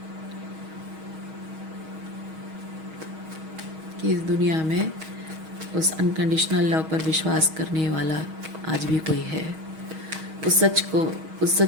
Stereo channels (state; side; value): late; left; 6.3 ms